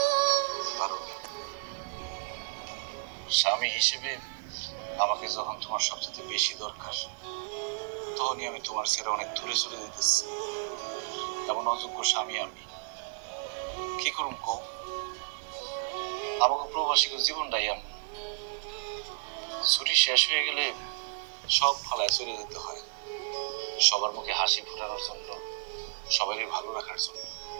স্বামী হিসেবে আমাকে যখন তোমার সবচেয়ে বেশি দরকার, তখনই আমি তোমার ছেড়ে অনেক দূরে চলে যেতেছি। এমন অযোগ্য স্বামী আমি কি করুম কো? আমাকে প্রবাসী জীবনটাই এমন, ছুটি শেষ হয়ে গেলে সব ফালায় চলে যেতে হয়, সবার মুখে হাসি ফোটানোর জন্য, সবারই ভালো রাখার জন্য।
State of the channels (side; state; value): left; silent; 57 dB below the other